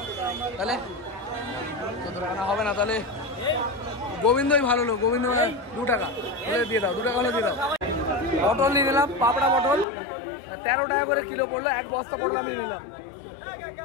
তাহলে 14 টাকা না হবে না, তাহলে গোবিন্দই ভালো লোক। গোবিন্দ 2 টাকা হলে দিয়ে দাও। 2 টাকা হলে দিয়ে দাও। পটল নিয়ে নিলাম, পাপড়া পটল 13 টাকা করে কিলো পড়লো, এক বস্তা পটল আমি নিলাম।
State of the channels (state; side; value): drops out; right; at 9.9 s